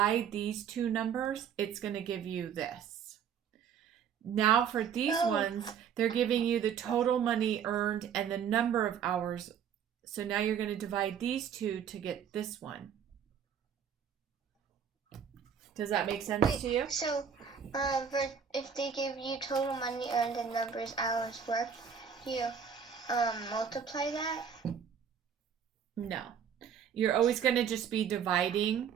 these 2 numbers, it's going to give you this. Now for these ones, they're giving you the total money earned and the number of hours. So now you're going to divide these two to get this one. Does that make sense to you? So, if they give you total money earned and numbers hours worked, you multiply that? No. You're always going to just be dividing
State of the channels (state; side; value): quieter; left; 7.6 dB